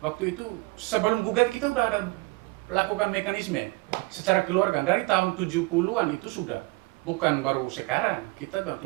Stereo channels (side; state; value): left; quieter; 24.0 dB